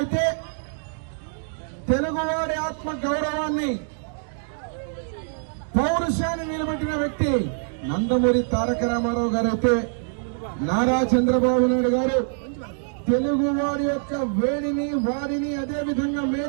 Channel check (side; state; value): left; silent; digital silence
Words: తెలుగువారి ఆత్మ గౌరవాన్ని, పౌరుషాన్ని నిలబెట్టిన వ్యక్తి నందమూరి తారక రామారావు గారు అయితే, నారా చంద్రబాబు నాయుడు గారు తెలుగువారి యొక్క వేడిని, వారిని, అదేవిధంగా